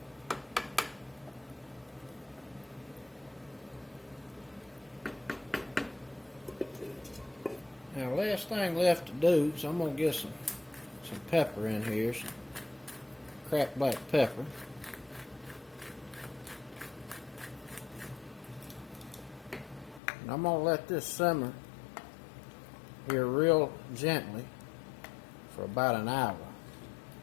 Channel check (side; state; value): right; drops out; at 20.0 s